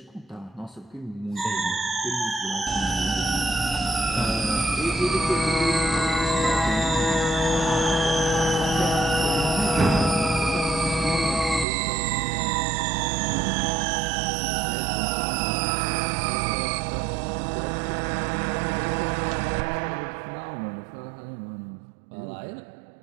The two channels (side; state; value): left; drops out; at 11.7 s